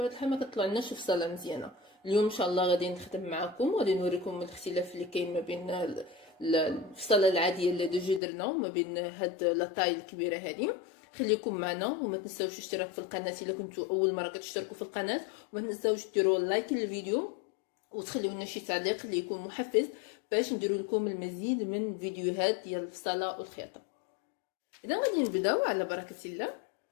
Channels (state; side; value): drops out; right; at 8.2 s